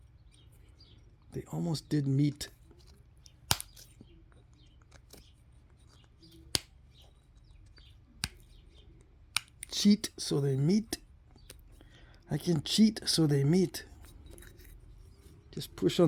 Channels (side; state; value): both; identical; correlation 1.00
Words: They almost did meet. Cheat so they meet. I can cheat so they meet. Just push